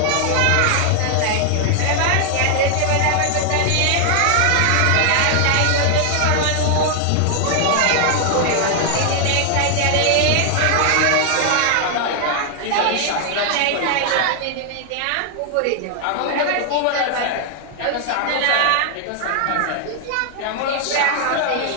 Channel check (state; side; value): different; both; correlation 0.00